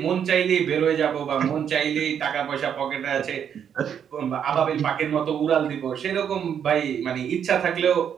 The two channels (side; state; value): left; quieter; 8.4 dB